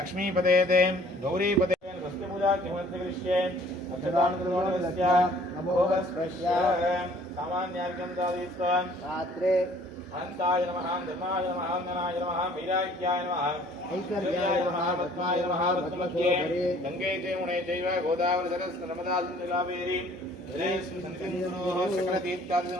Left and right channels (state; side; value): normal; both; correlation 0.55